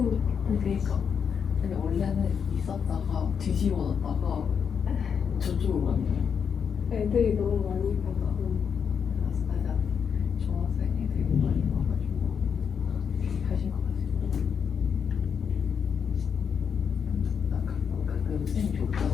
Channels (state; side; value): quieter; right; 7.0 dB